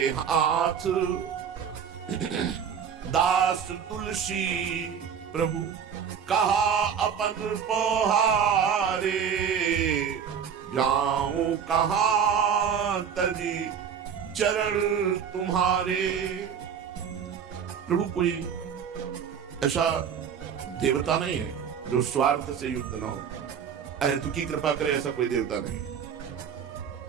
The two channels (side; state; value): left; quieter; 7.6 dB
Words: हाथ दास तुलसी। प्रभु कहा अपन पोहारे, जाऊं कहां तजी चरण तुम्हारे। प्रभु कोई ऐसा देवता नहीं है जो स्वार्थ से युक्त ना हो, अहेतुकी कृपा करे, ऐसा कोई देवता नहीं।